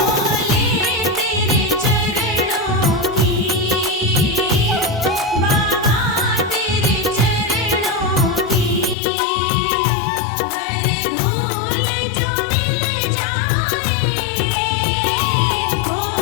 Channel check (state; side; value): drops out; right; at 9.0 s